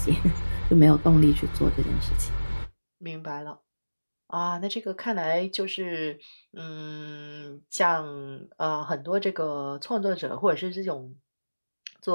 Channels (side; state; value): both; inverted; correlation -1.00